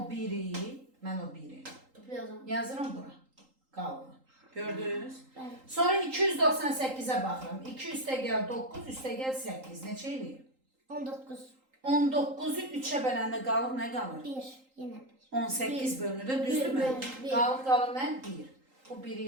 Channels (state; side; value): late; left; 3.8 ms